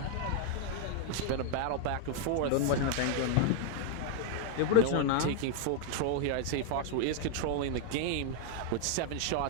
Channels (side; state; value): both; different; correlation 0.00